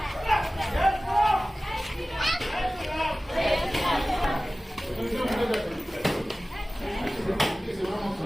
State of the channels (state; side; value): normal; both; correlation 0.97